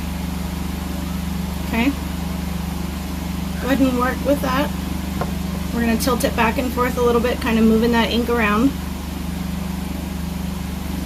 Okay. Go ahead and work with that. We're going to tilt it back and forth a little bit, kind of moving that ink around.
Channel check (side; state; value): both; identical; correlation 1.00